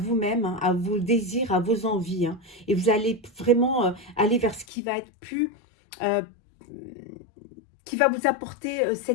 hein, à vos désirs, à vos envies. Hein, et vous allez vraiment aller vers ce qui va être plus... euh, qui va vous apporter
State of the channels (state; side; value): drops out; right; at 4.7 s